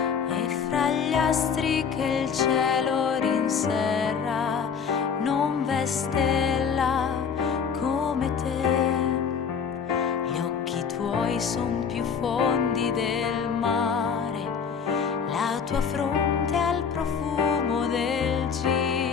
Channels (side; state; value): right; quieter; 6.5 dB